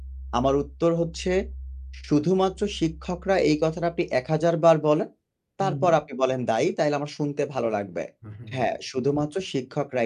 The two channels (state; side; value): identical; both; correlation 1.00